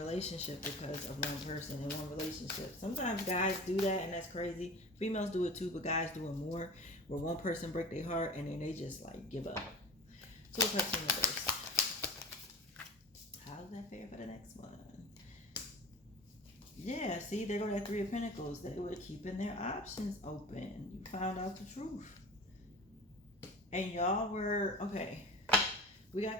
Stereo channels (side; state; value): both; normal; correlation 0.36